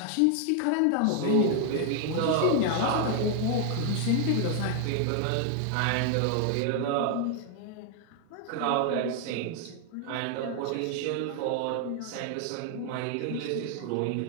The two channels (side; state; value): both; different; correlation 0.00